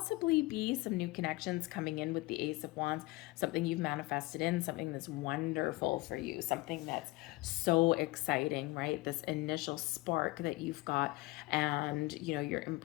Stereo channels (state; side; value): quieter; right; 21.2 dB